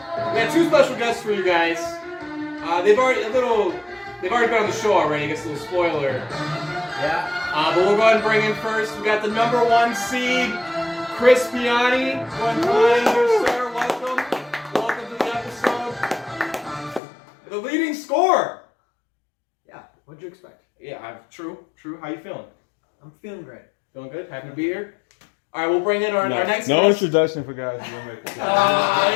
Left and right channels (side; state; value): right; drops out; at 17.0 s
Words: got two special guests for you guys. They've already been on the show already. I guess a little spoiler. Yeah. But we'll go ahead and bring in first. We got the number 1 seed, Chris Piani. One time here, sir. Welcome. Welcome to the episode. The leading scorer. Yeah, what'd you expect? Yeah, true. How you feeling? I'm feeling great. Feeling good? Happy to be here? All right, we'll bring in our next No guest. introduction for guys who don't make it. He